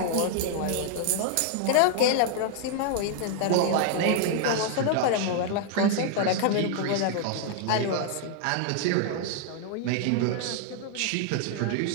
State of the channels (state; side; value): different; both; correlation 0.00